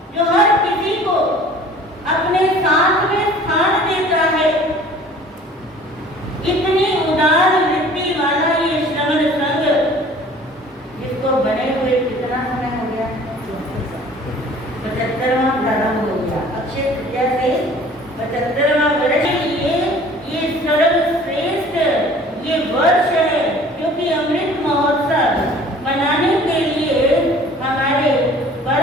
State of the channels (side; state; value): both; normal; correlation 0.49